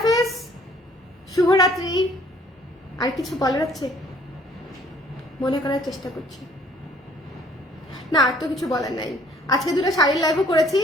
শুভরাত্রি। আর কিছু বলার আছে? মনে করার চেষ্টা করছি না, আর তো কিছু বলার নাই। আজকে দুটো শাড়ির লাইভও করেছি,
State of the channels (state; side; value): normal; both; correlation 0.58